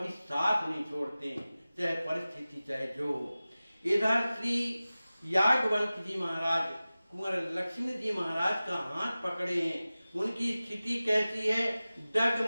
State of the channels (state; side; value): inverted; both; correlation -0.97